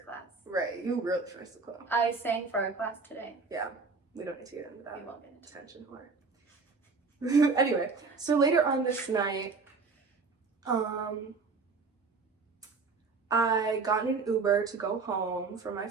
Right, you really first the club. I sang for our class today. Yeah, we don't need to get into that. We won't get into Attention whore. Anyway, so later on this night, I got in an Uber to go home from my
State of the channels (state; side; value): quieter; left; 4.5 dB